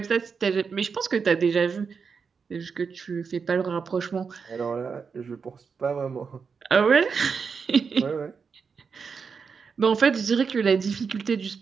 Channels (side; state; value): left; quieter; 5.7 dB